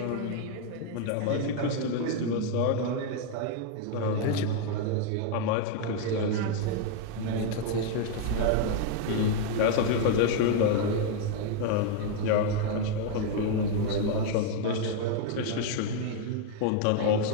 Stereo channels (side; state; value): both; different; correlation 0.00